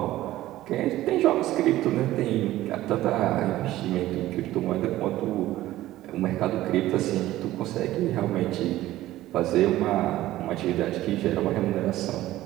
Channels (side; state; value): left; quieter; 15.3 dB